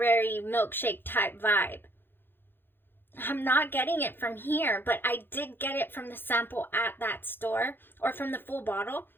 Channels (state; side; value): late; right; 0.10 ms